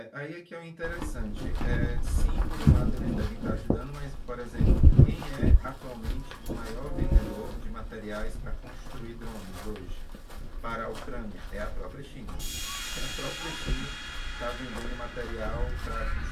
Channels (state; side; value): identical; both; correlation 1.00